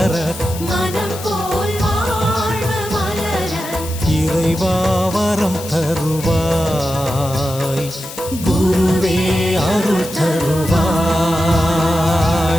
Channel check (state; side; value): noise; left; hiss, 12 dB below the sound